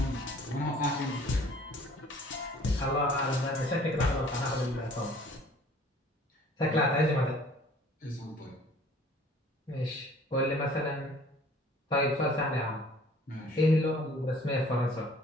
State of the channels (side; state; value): both; normal; correlation 0.53